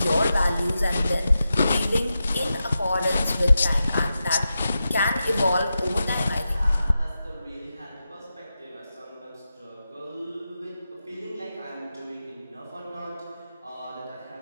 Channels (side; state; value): both; inverted; correlation -0.90